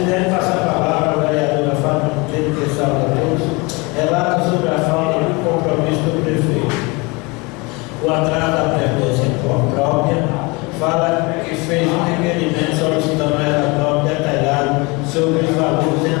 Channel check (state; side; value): quieter; right; 26.9 dB